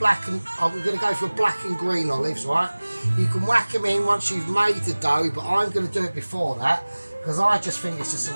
and, we're going to go for black and green olives, right? You can whack them in once you've made the dough, but I'm going to do it before that, because I just think it's just a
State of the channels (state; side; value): inverted; both; correlation -1.00